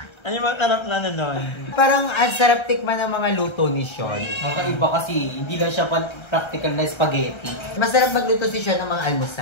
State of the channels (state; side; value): late; right; 1.3 ms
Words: Ano yung matarap na doon? Parang ang sarap tikman ng mga luto ni Sean. Kakaiba kasi, hindi lang siya practical na spaghetti. Masarap magluto si Sean ng mga